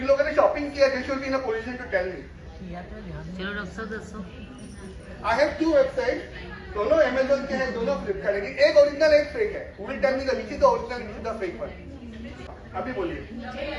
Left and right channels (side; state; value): both; identical; correlation 1.00